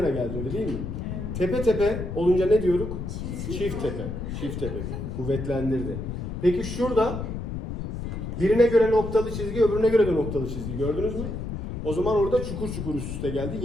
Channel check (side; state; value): left; noise; rumble, 5 dB below the sound